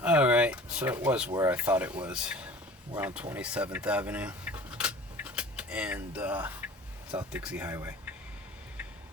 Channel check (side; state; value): both; normal; correlation 0.43